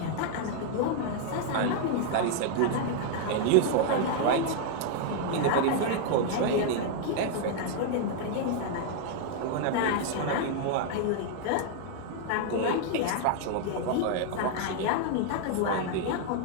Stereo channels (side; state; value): both; different; correlation 0.00